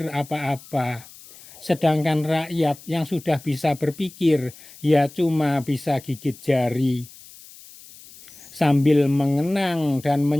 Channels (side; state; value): left; noise; hiss, 20 dB below the sound